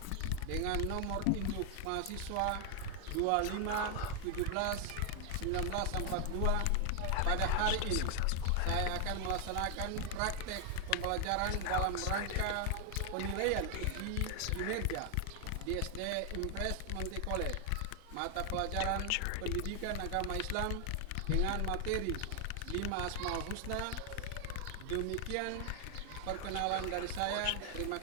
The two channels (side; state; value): both; different; correlation 0.00